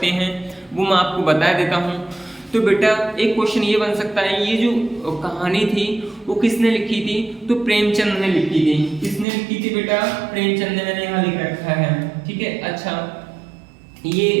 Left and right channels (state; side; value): drops out; left; at 9.2 s